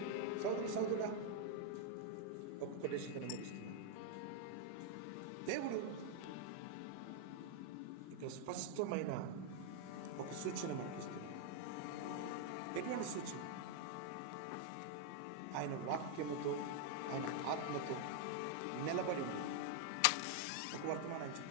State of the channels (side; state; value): both; different; correlation 0.00